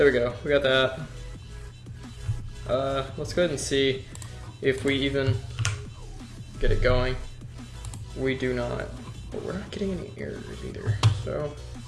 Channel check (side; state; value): both; identical; correlation 1.00